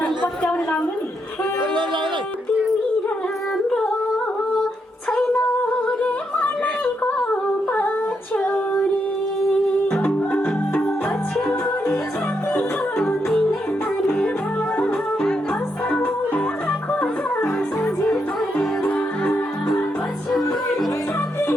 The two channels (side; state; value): both; normal; correlation 0.80